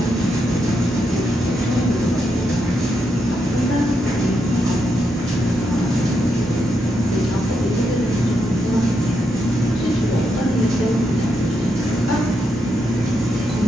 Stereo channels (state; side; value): normal; both; correlation 0.82